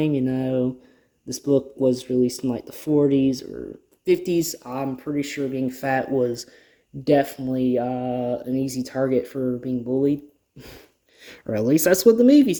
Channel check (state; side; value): identical; both; correlation 1.00